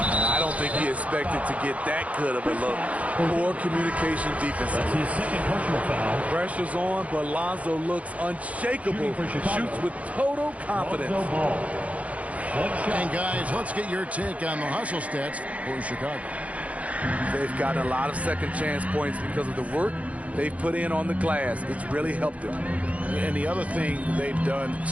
don't think he expected to get that good of a look. Poor communication defensively. That's his second personal foul. Pressure's on, but Lonzo looks unshakable. Shoots with total confidence. Lonzo Ball. And guys, let's get your take on the hustle stats for Chicago. They've gotten a lot of second chance points because of the work they've put in on the glass. It's really helped them. And the other thing they've done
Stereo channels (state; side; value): late; left; 0.066 ms